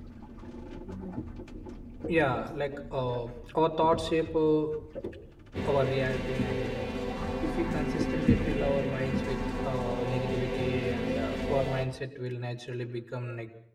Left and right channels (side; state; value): both; identical; correlation 1.00